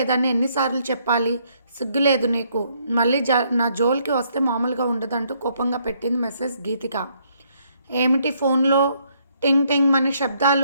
ఎన్నిసార్లు చెప్పాలి? సిగ్గులేదు నీకు? మళ్ళీ నా జోలికి వస్తే మామూలుగా ఉండదంటూ కోపంగా పెట్టింది మెసేజ్ గీతిక. ఏమిటి ఫోన్లో టింగ్ టింగ్ మని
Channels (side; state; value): both; inverted; correlation -0.70